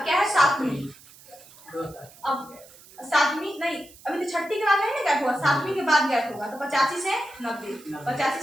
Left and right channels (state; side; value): noise; right; hiss, 23 dB below the sound